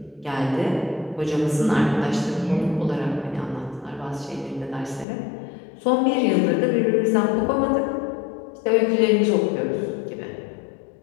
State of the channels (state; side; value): drops out; right; at 5.1 s